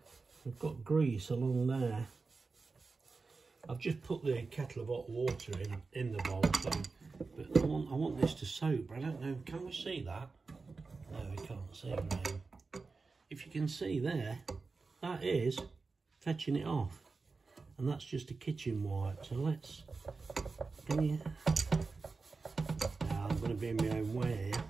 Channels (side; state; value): left; quieter; 4.2 dB